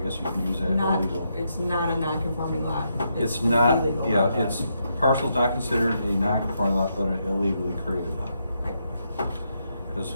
guess you can use that illegal. It's not a non-conforming lot. It's an not, illegal yeah, lot. it's, parcel's not considered a non-conforming lot, but an illegally created lot. Right. Cause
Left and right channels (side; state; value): both; inverted; correlation -0.80